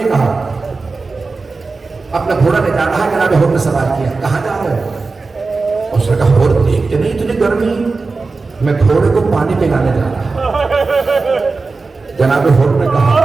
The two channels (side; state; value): left; quieter; 4.0 dB